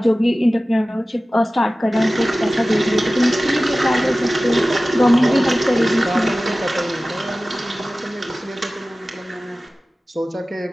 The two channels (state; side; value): normal; both; correlation 0.96